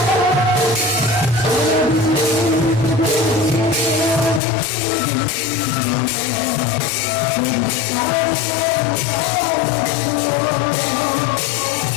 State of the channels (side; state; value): right; drops out; at 4.4 s